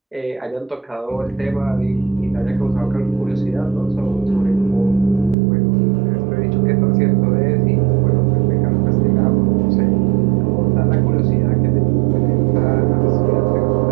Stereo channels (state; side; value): drops out; left; at 5.4 s